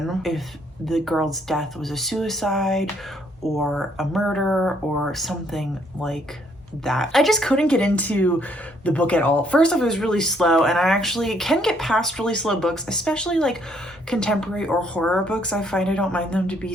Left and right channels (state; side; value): normal; both; correlation 0.68